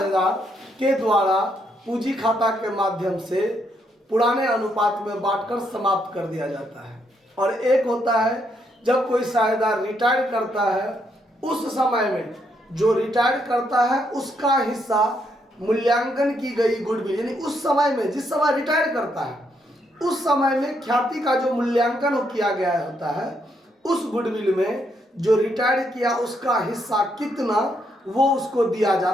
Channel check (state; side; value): normal; both; correlation 0.76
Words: के द्वारा पूंजी खाता के माध्यम से पुराने अनुपात में बांटकर समाप्त कर दिया जाता है। और एक होता है जब कोई साझेदार रिटायर करता है उस समय में जो रिटायर करता है उसका हिस्सा मूल्यांकन की गई गुडविल यानी उस समय में जिस समय रिटायर करता है उस समय में ख्याति का जो मूल्यांकन किया गया होता है उस गुडविल में जो रिटायर किया उसका हिस्सा कितना वो उसको दिया